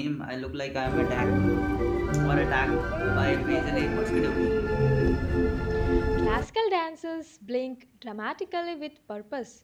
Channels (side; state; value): both; identical; correlation 1.00